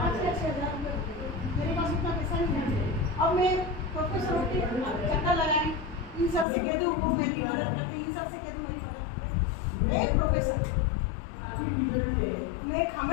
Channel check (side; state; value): right; drops out; at 6.5 s